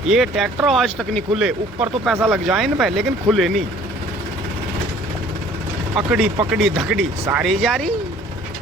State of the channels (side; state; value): both; normal; correlation 0.53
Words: ये ट्रैक्टर आज तक नहीं खुले, ऊपर तो पैसा लग जाए इन पे, लेकिन खुले नहीं। अकड़ी पकड़ी धकड़ी सारी जारी।